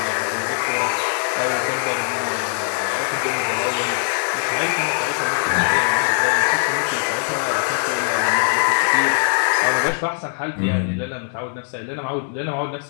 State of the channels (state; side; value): silent; right; digital silence